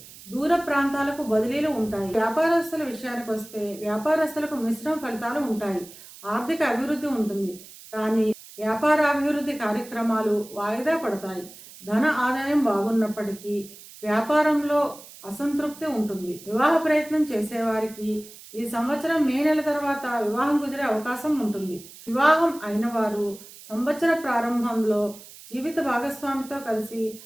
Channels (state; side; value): noise; right; hiss, 18 dB below the sound